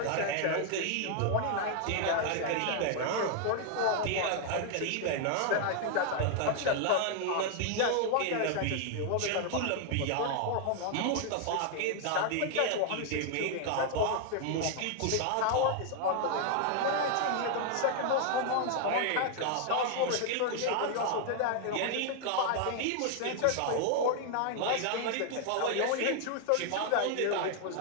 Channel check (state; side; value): different; both; correlation 0.00